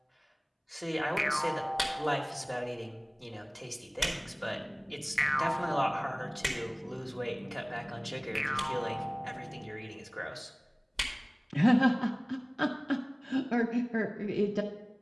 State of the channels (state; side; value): identical; both; correlation 1.00